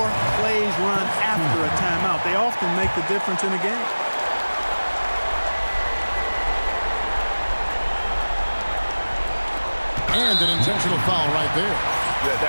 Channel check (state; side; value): inverted; both; correlation -1.00